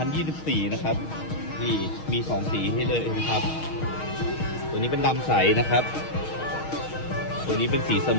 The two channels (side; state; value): right; late; 6.4 ms